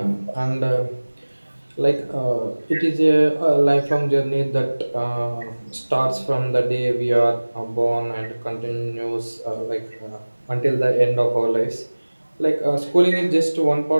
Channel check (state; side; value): inverted; both; correlation -1.00